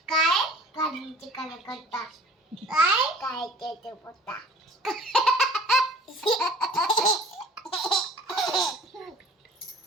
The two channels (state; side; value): normal; both; correlation 0.48